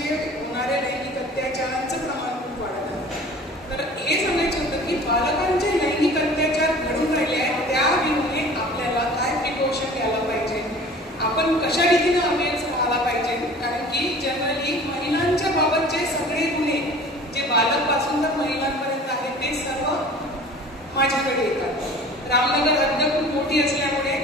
होणाऱ्या लैंगिक अत्याचारांचं प्रमाण खूप वाढत आहे. तर हे सांगायचं होतं की बालकांचे लैंगिक अत्याचार घडून राहिले आहेत त्या विरुद्ध आपल्याला काय प्रिकॉशन घ्यायला पाहिजे, आपण कशा रीतीने अवेअर राहायला पाहिजे. कारण की जनरली महिलांच्या बाबतचे सगळे गुन्हे जे बालकपासून तर महिलांपर्यंत आहेत ते सर्व माझ्याकडे येतात. रामनगर हद्द खूप मोठी असल्यामुळे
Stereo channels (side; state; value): both; normal; correlation 0.44